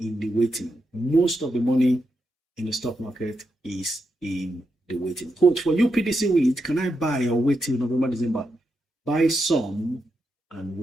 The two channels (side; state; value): both; normal; correlation 0.85